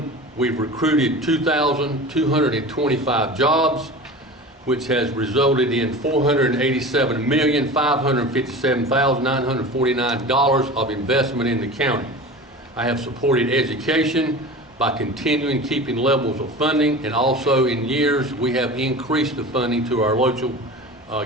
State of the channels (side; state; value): both; normal; correlation 0.34